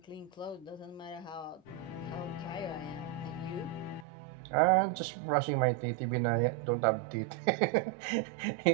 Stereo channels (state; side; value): drops out; left; at 4.0 s